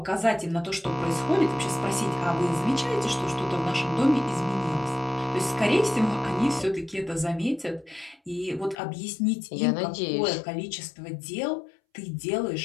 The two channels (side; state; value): right; drops out; at 8.8 s